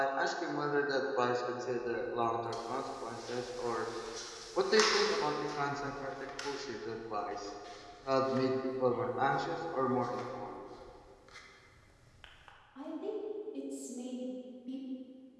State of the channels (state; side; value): identical; both; correlation 1.00